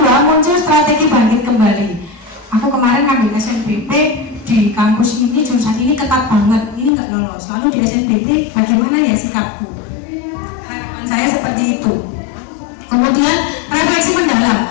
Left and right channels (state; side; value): drops out; right; at 6.9 s